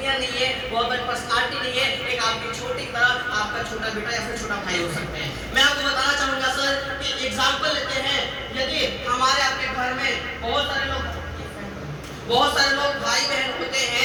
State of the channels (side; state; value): both; identical; correlation 1.00